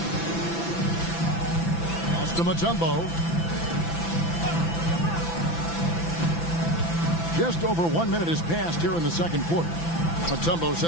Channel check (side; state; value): right; late; 5.9 ms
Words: Pass to Mutombo. Just over 1 minute has passed here in the second quarter. Mutombo